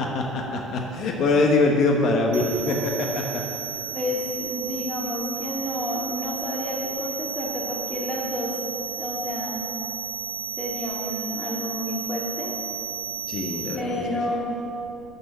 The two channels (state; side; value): noise; right; rumble, 23 dB below the sound